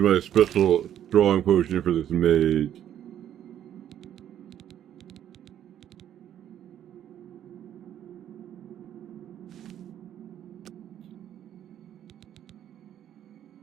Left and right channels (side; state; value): left; quieter; 10.7 dB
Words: my special strong potion for this mage.